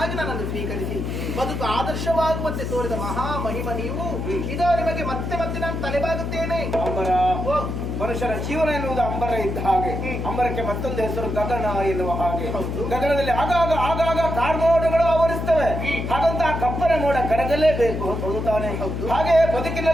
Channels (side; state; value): left; noise; hum, 3 dB below the sound